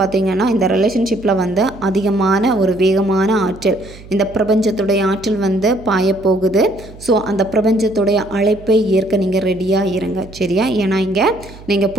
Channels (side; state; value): right; noise; hum, 19 dB below the sound